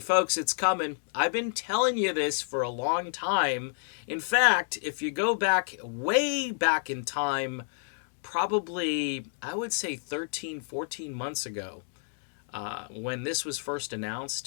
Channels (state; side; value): silent; right; digital silence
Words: Folks, it's coming. I've been telling you this for a long time. In fact, if you go back, way back in time, probably, I would say 13, 14 months ago, when this was first